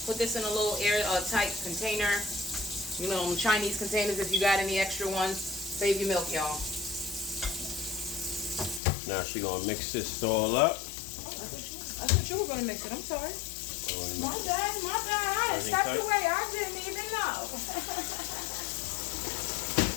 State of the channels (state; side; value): drops out; right; at 8.8 s